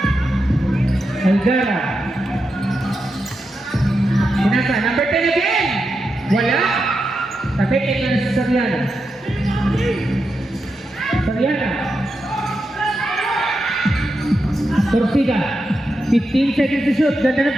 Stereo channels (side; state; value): both; normal; correlation 0.87